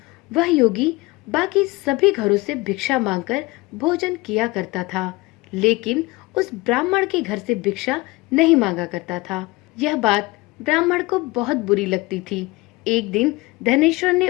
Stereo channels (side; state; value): right; quieter; 21.8 dB